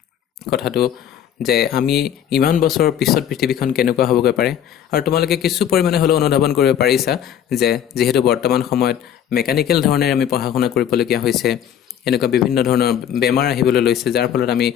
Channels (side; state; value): right; quieter; 9.7 dB